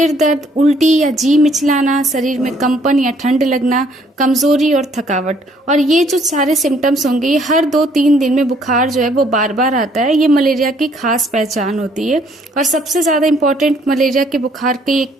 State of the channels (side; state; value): both; normal; correlation 0.64